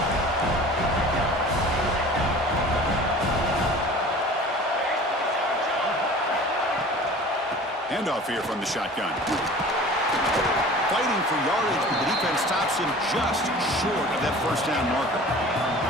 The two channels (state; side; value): normal; both; correlation 0.42